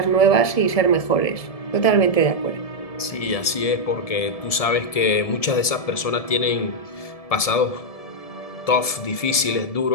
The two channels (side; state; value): right; late; 1.7 ms